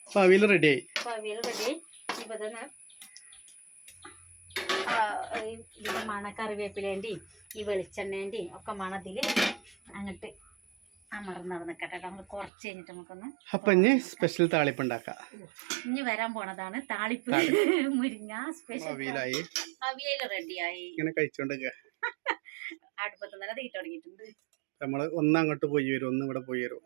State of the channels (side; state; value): left; drops out; at 12.5 s